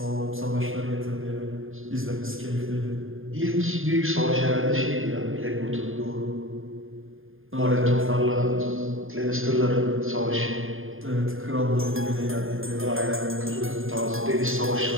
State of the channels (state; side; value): late; left; 0.59 ms